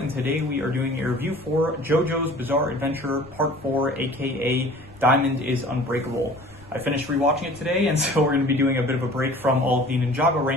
today we are doing a review for JoJo's Bizarre Adventure Part 4, aka Diamond is Unbreakable. I finished rewatching it today, and so we're going to be doing a bit of a break from all of the Ninjago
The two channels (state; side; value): noise; left; rumble, 23 dB below the sound